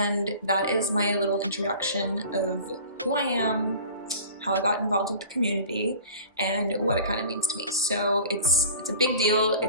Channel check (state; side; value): inverted; both; correlation -0.42